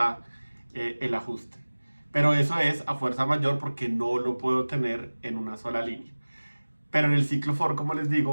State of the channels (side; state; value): both; inverted; correlation -1.00